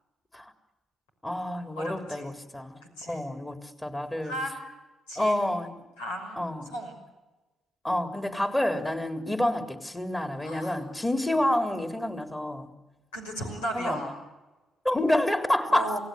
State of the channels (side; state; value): both; normal; correlation 0.93